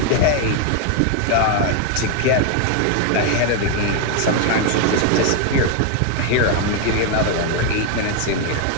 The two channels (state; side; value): different; both; correlation 0.01